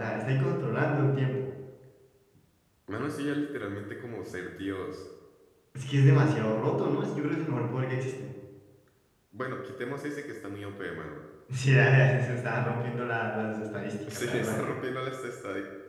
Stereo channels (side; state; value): both; identical; correlation 1.00